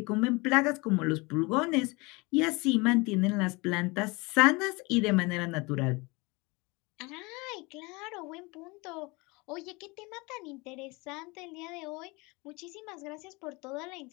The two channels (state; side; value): quieter; right; 25.9 dB